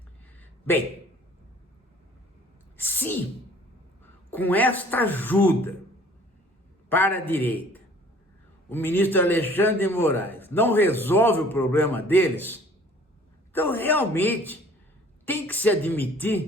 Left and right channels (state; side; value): normal; both; correlation 0.52